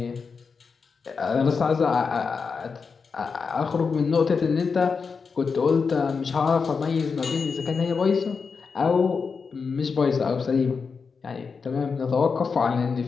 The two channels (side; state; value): right; quieter; 5.3 dB